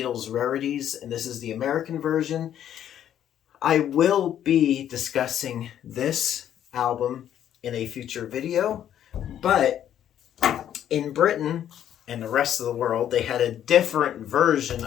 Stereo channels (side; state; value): right; quieter; 10.5 dB